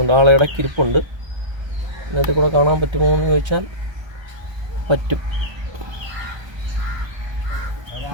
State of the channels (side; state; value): left; late; 1.2 ms